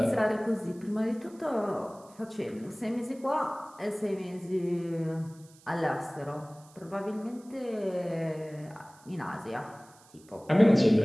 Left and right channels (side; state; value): right; noise; hiss, 26 dB below the sound